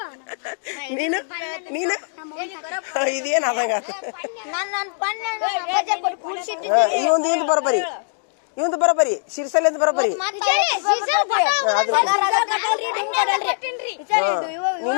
ನೀನು ನೀನು ಇದೇನು ಆದಂಗ ಇವಂದು ಬರೋಬರಿ ಇವಂದು ಬರೋಬರಿ ಶಿರ್ಸಲಿಂದ ಬರೋಬರಿ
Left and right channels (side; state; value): right; silent; digital silence